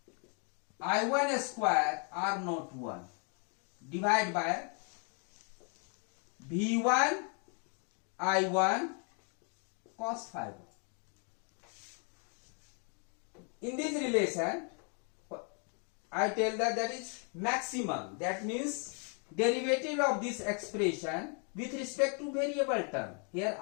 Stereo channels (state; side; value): quieter; right; 39.8 dB